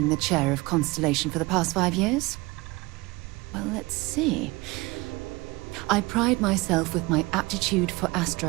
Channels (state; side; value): quieter; left; 22.9 dB